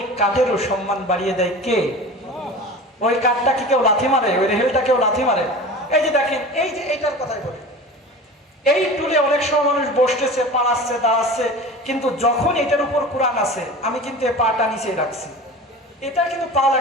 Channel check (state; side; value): normal; both; correlation 0.35